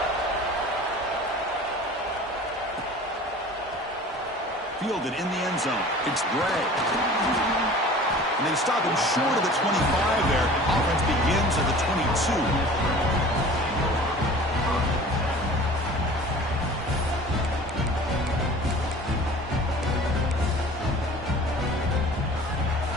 Fielded in the end zone. It's Gray. And they stop him short of the 25 there. Offense begins at the 22.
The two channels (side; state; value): both; normal; correlation 0.43